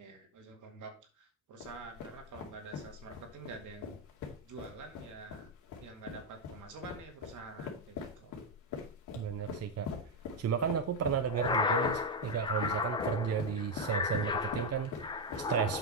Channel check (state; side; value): normal; both; correlation 0.04